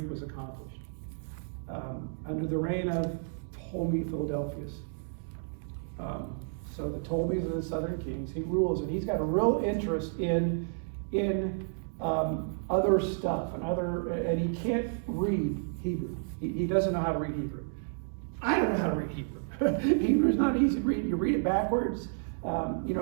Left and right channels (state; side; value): silent; left; digital silence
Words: was accomplished. Under the reign of Ptolemy Philadelphus. So the Ptolemies are the southern kings. He rules, and he's got a real interest in other stuff and he can't read Hebrew. He doesn't know how to read Hebrew. I don't know how to read Hebrew. Hebrew is not easy to read. You read it backwards.